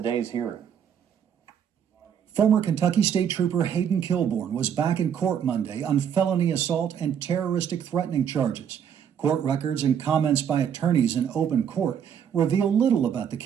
hearing. Former Kentucky State Trooper Hayden Kilborn was back in court Monday on felony assault and terroristic threatening charges. Court records and comments by attorneys in open court reveal little about the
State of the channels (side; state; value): left; quieter; 8.4 dB